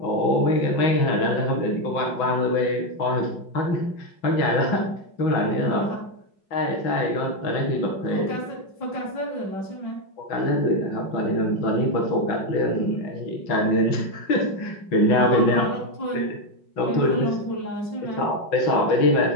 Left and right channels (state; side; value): late; right; 5.4 ms